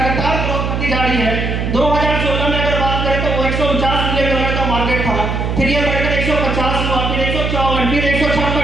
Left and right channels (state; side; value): noise; right; hum, 1 dB below the sound